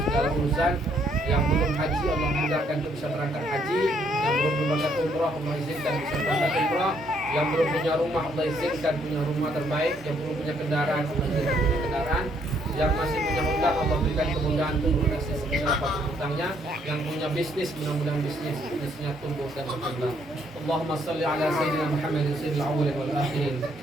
segala urusan. Yang belum haji Allah mudahkan untuk bisa berangkat haji. Yang belum berangkat umrah Allah izinkan bisa berangkat umrah. Yang belum punya rumah Allah izinkan punya rumah terbaik. Yang belum punya kendaraan Allah izinkan punya kendaraan. Yang masih punya hutang Allah berikan kemudahan untuk melunasi sebesar apapun hutangnya. Yang punya bisnis mudah-mudahan bisnisnya tumbuh dan berkembang. Allahumma salli ala sayyidina Muhammadin sayyidil awwalin wal akhirin.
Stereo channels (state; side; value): normal; both; correlation 0.69